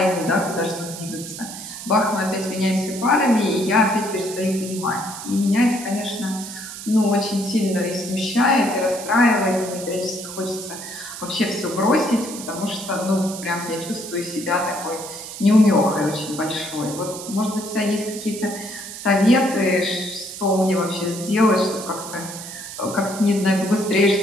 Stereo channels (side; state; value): right; noise; hiss, 11 dB below the sound